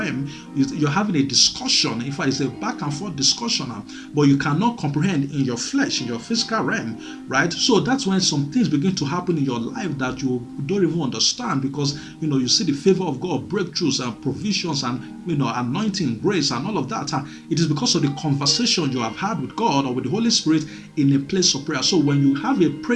you're having a discussion. In fact, it's a back and forth discussion, but you cannot comprehend in your flesh, in your physical realm, right? So that's when some things begin to happen in your life that you don't even understand, because you see the favor of God, breakthroughs and provisions, and anointing, grace, and all of that. It is because of the conversation you have had with God or with the Holy Spirit in a place of prayer. So when you have a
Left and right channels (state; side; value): identical; both; correlation 1.00